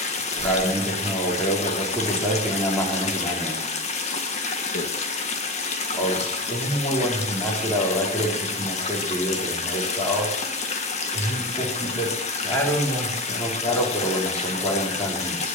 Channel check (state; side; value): normal; both; correlation 0.21